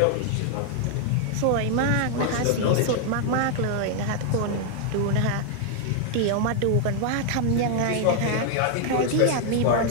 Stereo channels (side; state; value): both; different; correlation 0.00